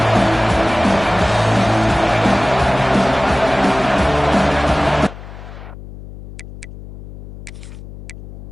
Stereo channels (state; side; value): noise; left; hum, 15 dB below the sound